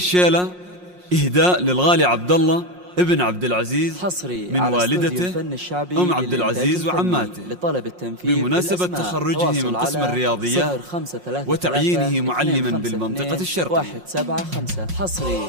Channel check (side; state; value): left; late; 5.6 ms